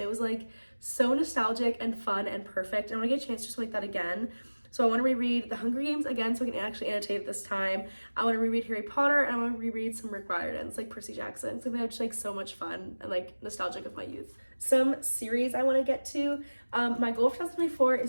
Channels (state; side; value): inverted; both; correlation -1.00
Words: it was like so nostalgic and fun and perfect. I want to get a chance just to make that again. So I want to reread the Hunger Games again so I can actually annotate it this time. I want to reread Harry Potter, and I want to reread some Rick Riordan's, like Percy Jackson. So they have just like so much fun and like nostalgic of my youth. Some series I want to get to. My goal for 2024